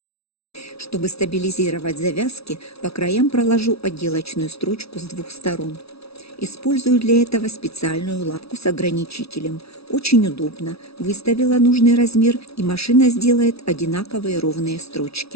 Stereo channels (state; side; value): late; right; 0.77 ms